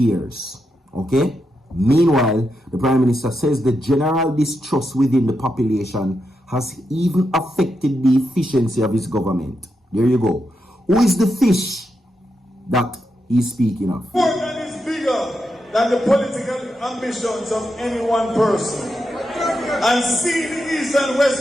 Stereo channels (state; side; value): normal; both; correlation 0.85